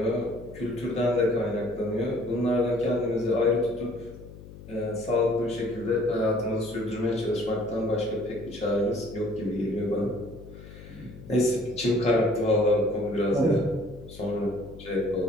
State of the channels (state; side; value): noise; left; hum, 16 dB below the sound